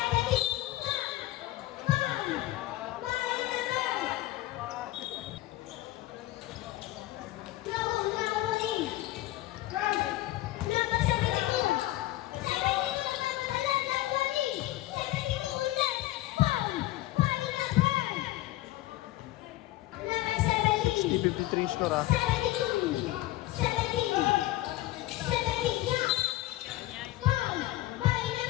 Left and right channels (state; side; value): quieter; right; 16.7 dB